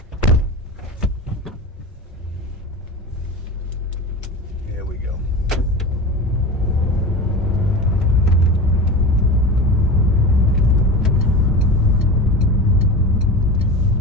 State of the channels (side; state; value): both; normal; correlation 0.29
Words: Here we go.